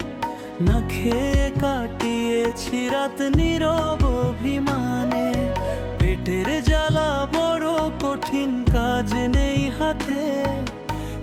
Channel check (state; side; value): identical; both; correlation 1.00